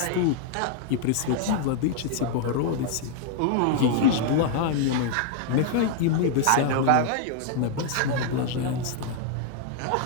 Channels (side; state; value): both; different; correlation 0.00